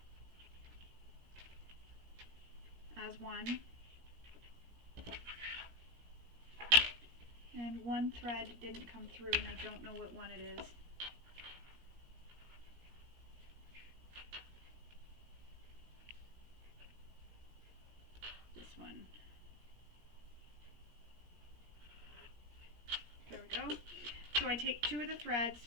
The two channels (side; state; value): left; late; 17 ms